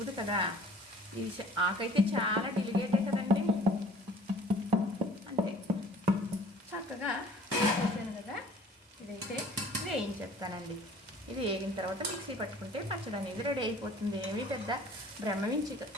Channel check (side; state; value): both; normal; correlation 0.51